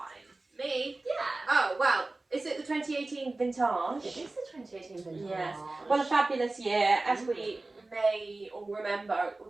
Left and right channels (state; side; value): quieter; left; 3.1 dB